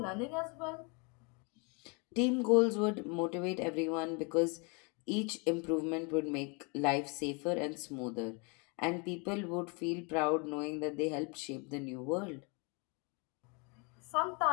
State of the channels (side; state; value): right; quieter; 32.5 dB